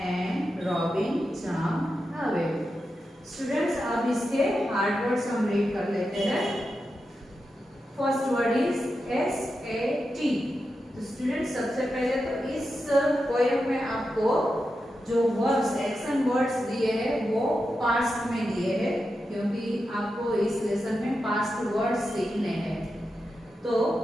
Robin jumped away. Students, अब इसके hard words हम read कर लेते हैं। First word is SAT। तो students सबसे पहले तो इस पोएम में आपको जो वर्ड्स एक्शन वर्ड्स दिए हैं वो पास्ट में दिए हैं, क्योंकि आपको इस लेसन में पास्ट वर्ड्स सीखने हैं। तो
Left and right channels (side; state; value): both; normal; correlation 0.89